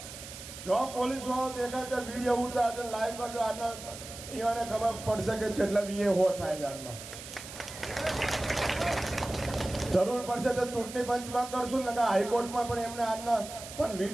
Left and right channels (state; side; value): noise; right; hiss, 12 dB below the sound